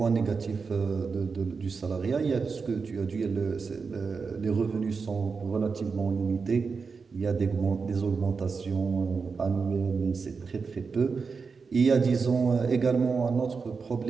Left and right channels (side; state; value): left; quieter; 5.0 dB